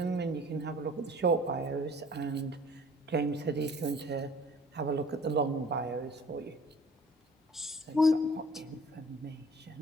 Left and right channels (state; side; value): normal; both; correlation 0.51